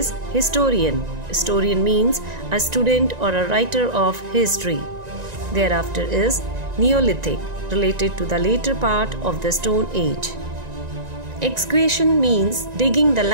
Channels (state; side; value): late; left; 1.9 ms